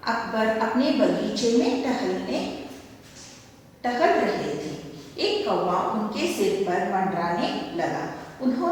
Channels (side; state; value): both; identical; correlation 1.00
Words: अकबर अपने बगीचे में टहल रहे थे। एक कौवा उनके सिर पर मंडराने लगा।